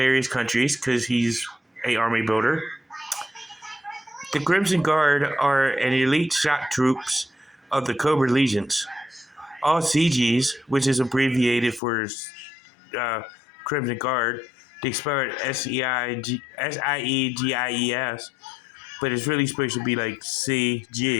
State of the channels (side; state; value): right; drops out; at 11.8 s